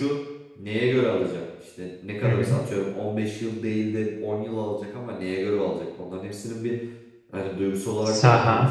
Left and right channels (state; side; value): identical; both; correlation 1.00